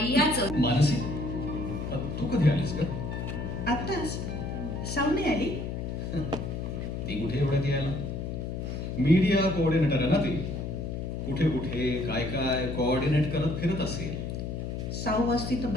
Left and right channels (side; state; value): left; noise; hum, 4 dB below the sound